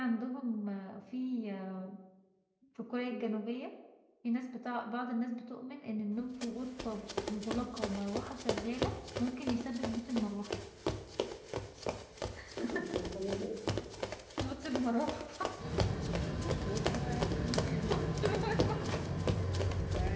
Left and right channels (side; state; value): both; identical; correlation 1.00